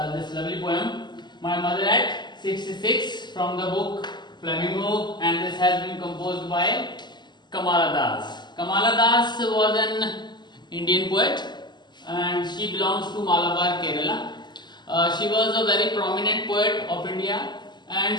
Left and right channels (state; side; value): late; right; 0.21 ms